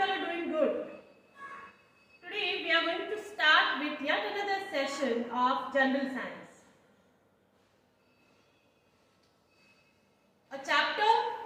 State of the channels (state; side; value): identical; both; correlation 1.00